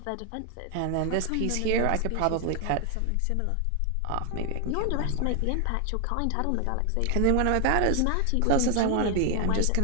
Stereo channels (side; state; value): both; different; correlation 0.00